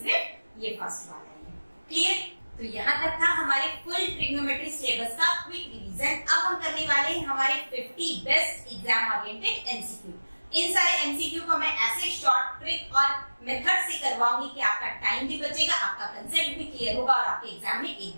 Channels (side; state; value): both; inverted; correlation -1.00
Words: ये फर्स्ट वाला है। क्लियर? तो यहाँ तक था हमारे फुल ट्रिग्नोमेट्री सिलेबस का क्विक रिवीजन। अब हम करने वाले हैं हमारे 50 बेस्ट एग्जाम ओरिएंटेड एमसीक्यू। इन सारे एमसीक्यू को मैं ऐसे शॉर्ट ट्रिक और मेथड से करवाऊंगी कि आपका टाइम भी बचेगा, आपका कंसेप्ट भी क्लियर होगा और आपके एग्जाम में एक